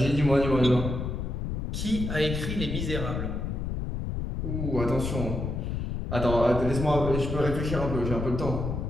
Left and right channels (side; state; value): left; noise; rumble, 3 dB below the sound